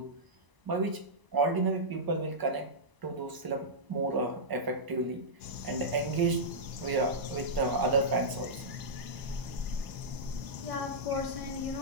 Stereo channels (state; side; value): late; left; 1.0 ms